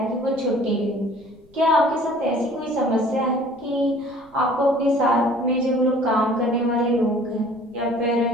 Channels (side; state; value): left; noise; rumble, 29 dB below the sound